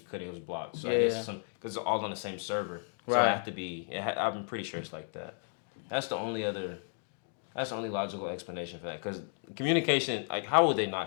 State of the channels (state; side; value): silent; right; 56 dB below the other